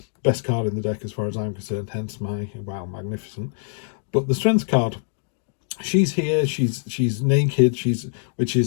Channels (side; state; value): right; silent; digital silence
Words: Best card in the deck as far as I'm concerned, hence my, wow, magnificent. But the Strength card, she's here, she's naked,